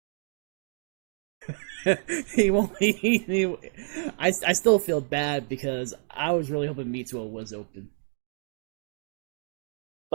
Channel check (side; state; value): left; silent; digital silence